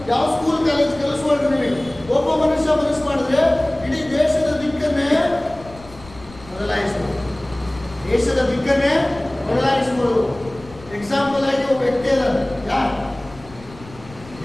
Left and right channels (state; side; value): noise; left; rumble, 20 dB below the sound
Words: ಯಾವ ಸ್ಕೂಲ್ ಕಾಲೇಜ್ ಕಲಿಸ್ಬಾರ್ದು. ನಿಮಗೆ ಒಬ್ಬ ಮನುಷ್ಯ ಮನಸ್ಸು ಮಾಡಿದ್ರೆ ಇಡೀ ದೇಶದ ದಿಕ್ಕನ್ನೇ ಬದಲಾಯಿಸ್ಬೋದು. ದೇಶದ ದಿಕ್ಕನ್ನೇ ಬದಲಾಯಿಸ್ಬೋದು. ಎಕ್ಸಾಂಪಲ್ ಆಗಿ ಒಬ್ಬ ವ್ಯಕ್ತಿ ಅದಾರೆ.